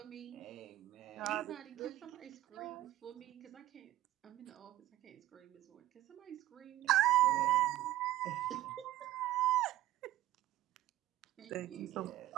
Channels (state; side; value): quieter; left; 14.7 dB